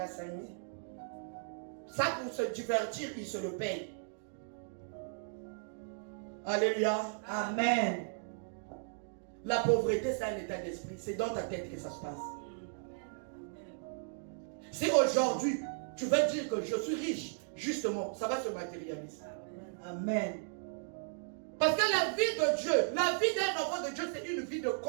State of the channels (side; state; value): left; silent; digital silence